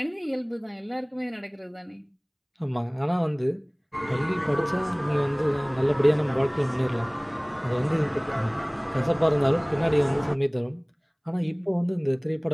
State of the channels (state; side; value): identical; both; correlation 1.00